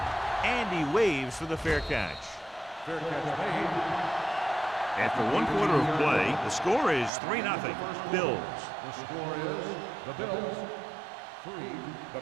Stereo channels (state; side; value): drops out; left; at 7.1 s